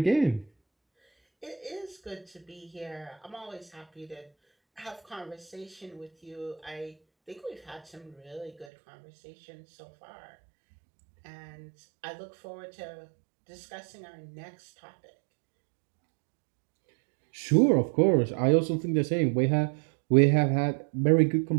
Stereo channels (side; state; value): left; drops out; at 8.7 s